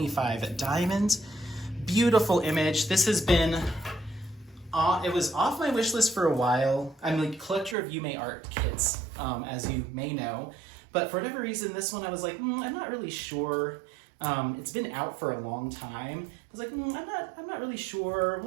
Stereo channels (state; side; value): drops out; left; at 7.8 s